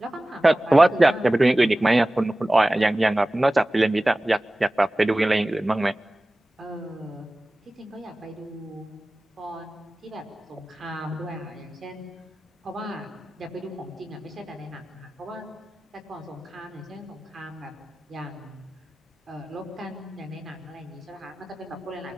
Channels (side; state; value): both; normal; correlation 0.97